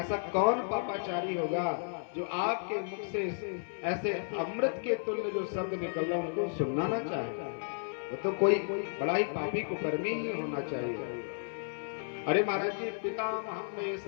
कौन पापाचारी होगा जो आपके मुख से ऐसे अमृत के तुल्य जो शब्द निकल रहा उनको सुनना ना चाहे। वो तो कोई बड़ा ही पापी कुकर्मी ही होना चाहिए। अरे महाराज जी, पितामह में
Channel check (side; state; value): right; silent; 56 dB below the other